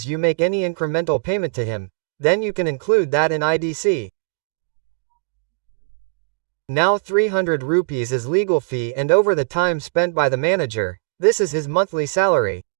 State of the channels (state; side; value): silent; left; digital silence